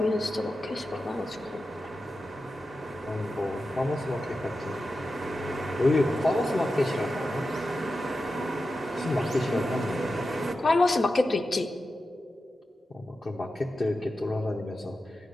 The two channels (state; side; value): normal; both; correlation 0.91